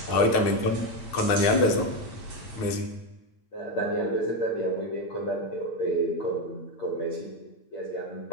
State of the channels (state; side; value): late; right; 9.4 ms